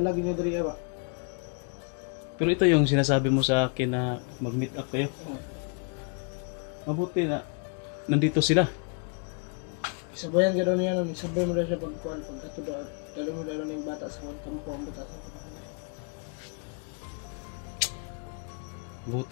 niya dre ba? Pero ito yung sinasabi mo sa akin na mag-meet up kayo. Mabuti na nandito sila. Sabayan ka daw niya nun, sabay mo daw siya pagkuhan, pagkato daw, dalo mo daw na yung bata sa kampo, ang bata sa kampo.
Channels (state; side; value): quieter; right; 39.9 dB